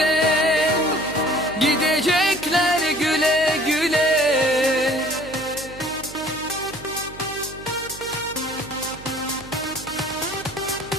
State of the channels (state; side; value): noise; right; hum, 16 dB below the sound